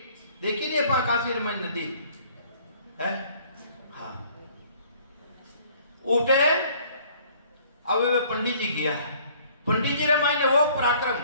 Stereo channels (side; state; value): both; inverted; correlation -0.57